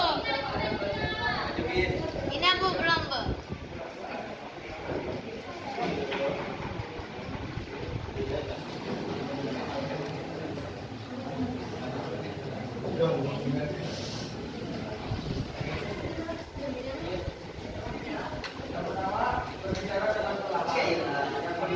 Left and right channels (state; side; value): identical; both; correlation 1.00